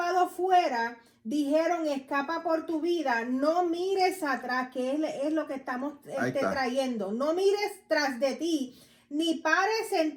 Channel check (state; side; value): identical; both; correlation 1.00